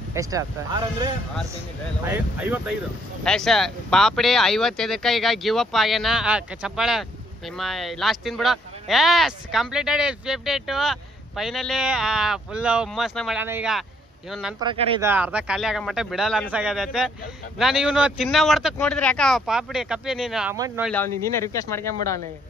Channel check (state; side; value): normal; both; correlation 0.68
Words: ಎಷ್ಟು ಆಗ್ತದೆ? ಪಾಪಡಿ 55. ಈಗ ಗಿವ್ ಅಪ್ ಆಗ್ಯಾನ. ಚಪ್ಪಾಳೆ ನಿಮ್ಮ ಲಾಸ್ಟ್ ತಿನ್ಬಿಡು. Yes completed 52. ಫೈನಲಿ ಫುಲ್ ಹುಮ್ಮಸ್ನ ಮಾಡ್ಯಾನ. ಈಗ ಇವನು ನನ್ನ ಪ್ರಕಾರ ಇದು ಅರ್ಧ ಖಾಲಿ ಆಗೋ ಮಟ್ಟ ಬಿಡಲ್ಲ ಅನ್ಸಾಗದೈತೆ. ನಾನು ಇವನು ತಿನ್ನೋ ಹೊಡ್ತಕ್ ನೋಡಿದ್ರೆ ಯಾಕ ಪಾಪಡಿ ಕಪ್ಪಿ ನೀನು ಅಮೌಂಟ್ ನೋಡ್ಲಿ. ಅವ್ನಿಗೆ ನೀನೇ ರಿಕ್ವೆಸ್ಟ್ ಮಾಡ್ಕೊಂಬಿಡು. ಅವನಿಗೆ